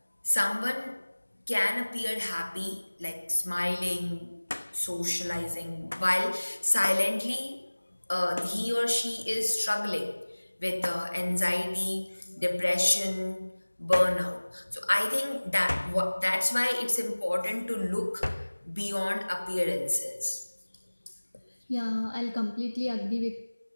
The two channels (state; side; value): inverted; both; correlation -1.00